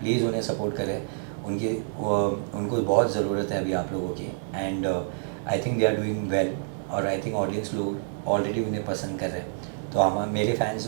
उन्हें सपोर्ट करें, उनको बहुत ज़रूरत है अभी आप लोगों की। And I think they are doing well, और आई थिंक ऑडियंस लोग ऑलरेडी उन्हें पसंद कर रहे हैं। तो हम, मेरे फैंस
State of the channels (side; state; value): left; silent; digital silence